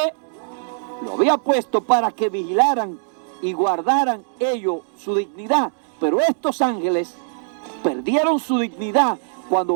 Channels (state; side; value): silent; left; digital silence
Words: lo había puesto para que vigilaran y guardaran ellos su dignidad. Pero estos ángeles perdieron su dignidad